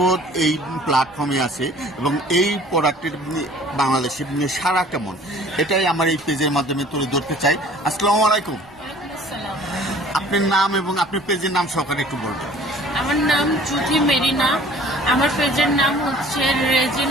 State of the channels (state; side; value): noise; right; rumble, 29 dB below the sound